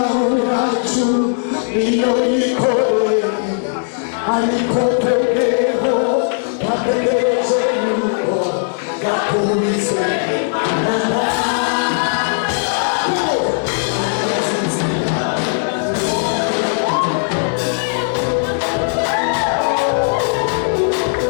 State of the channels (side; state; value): right; silent; digital silence